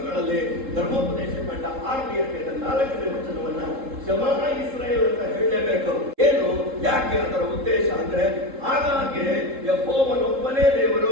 ಧರ್ಮೋಪದೇಶ ಕಂಡ 6ನೇ ಅಧ್ಯಾಯದ 4ನೇ ವಚನವನ್ನ ಶಮಾ ಇಸ್ರೇಲ್ ಅಂತ ಹೇಳಲೇಬೇಕು. ಏನು, ಯಾಕೆ? ಅದರ ಉದ್ದೇಶ ಅಂದ್ರೆ ಆಗಾಗ್ಗೆ ಯೆಹೋವನೊಬ್ಬನೇ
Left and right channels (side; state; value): left; late; 3.7 ms